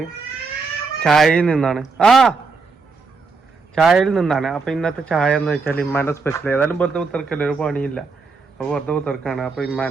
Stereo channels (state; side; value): quieter; left; 4.5 dB